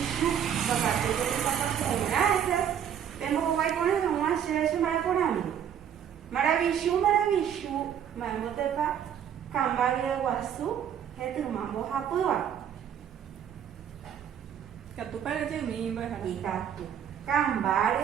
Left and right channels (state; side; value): quieter; left; 9.0 dB